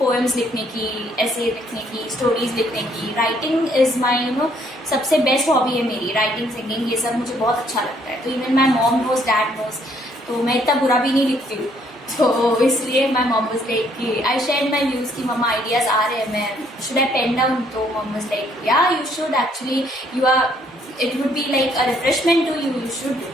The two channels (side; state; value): both; normal; correlation 0.66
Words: लिखने की, ऐसे लिखने की, स्टोरीज लिखने की। राइटिंग इज़ माई सबसे बेस्ट हॉबी है मेरी, राइटिंग, सिंगिंग, ये सब मुझे बहुत अच्छा लगता है। तो even my mom knows, dad knows, तो मैं इतना बुरा भी नहीं लिखती हूँ। तो इसलिए माई मॉम वाज लाइक कि आई शेयर्ड माई व्यूज कि मम्मा आइडियाज आ रहे हैं, मैं शुड आई पेन डाउन? तो mom was like yeah you should actually, you are, it would be like a refreshment to you, you should do.